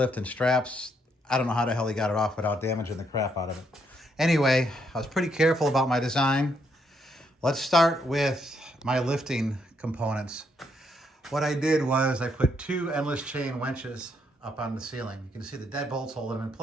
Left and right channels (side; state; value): both; normal; correlation 0.75